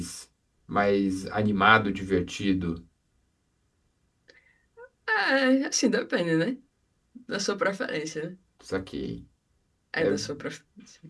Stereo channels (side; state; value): both; identical; correlation 1.00